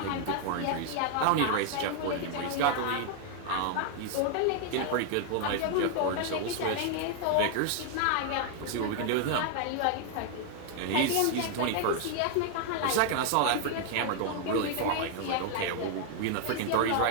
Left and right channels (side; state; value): both; different; correlation 0.00